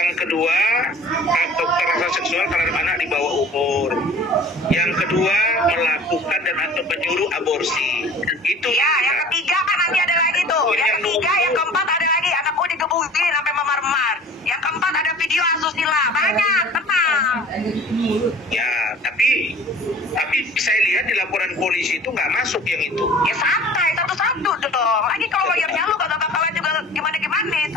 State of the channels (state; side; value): normal; both; correlation 0.45